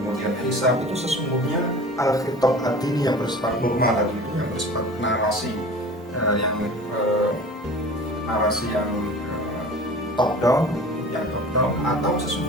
hisab, itu sesungguhnya al-khitab at-tini yang bersifat normal tadi itu, yang bersifat narasi yang top down, atau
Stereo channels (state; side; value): normal; both; correlation 0.40